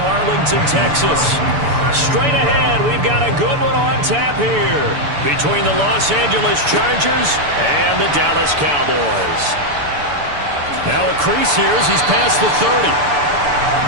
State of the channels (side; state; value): left; late; 6.9 ms